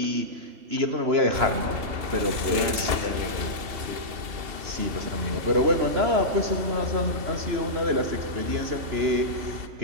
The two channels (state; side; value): late; left; 2.7 ms